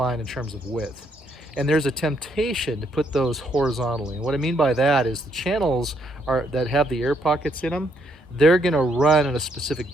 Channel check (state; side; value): normal; both; correlation 0.72